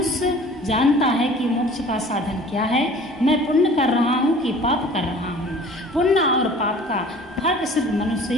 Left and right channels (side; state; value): both; normal; correlation 0.47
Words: जानता है कि मोक्ष का साधन क्या है। मैं पुण्य कर रहा हूँ कि पाप कर रहा हूँ। पुण्य और पाप का फर्क सिर्फ मनुष्य